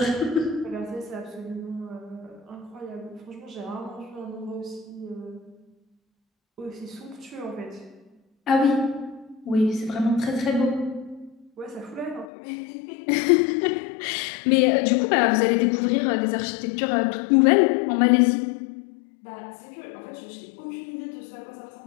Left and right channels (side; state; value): right; drops out; at 12.2 s